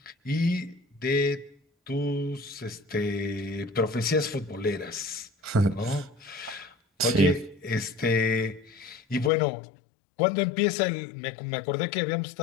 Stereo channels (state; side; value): drops out; right; at 9.3 s